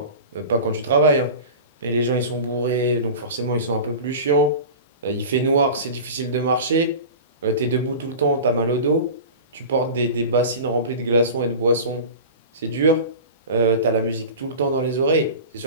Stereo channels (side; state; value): both; inverted; correlation -0.33